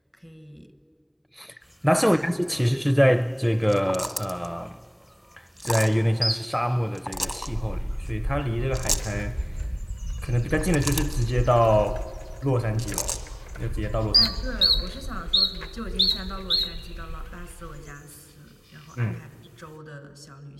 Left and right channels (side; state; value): both; identical; correlation 1.00